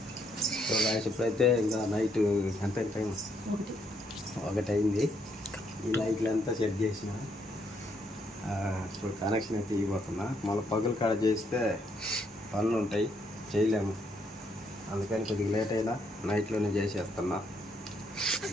సో గాయస్ ఇప్పుడైతే ఇంకా నైట్ ఎంత టైం? 1 అయింది. ఈ లైట్లు అంతా సెట్ చేసిన ఇప్పుడు కనెక్షన్ అయితే ఇవ్వబోతున్నా. మళ్ళీ పగులు కాడ చేస్తే పనులు ఉంటాయి, చేయలేము. అందుకని కొద్దిగా లేట్ అయినా నైట్లోనే చేసేస్తున్నా.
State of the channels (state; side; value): normal; both; correlation 0.73